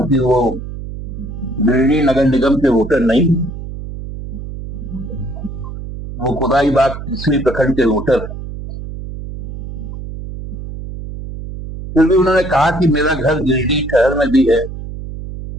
वो गिरिडीह नगर निगम के वोटर नहीं, वो कोदाईबाग तीसरी प्रखंड के वोटर। फिर भी उन्होंने कहा कि मेरा घर गिरिडीह शहर में भी है,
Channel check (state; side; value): noise; right; hum, 9 dB below the sound